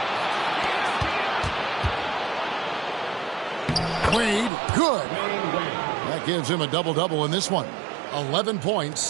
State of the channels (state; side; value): drops out; left; at 4.5 s